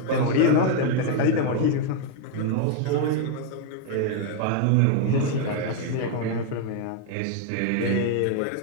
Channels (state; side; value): different; both; correlation 0.01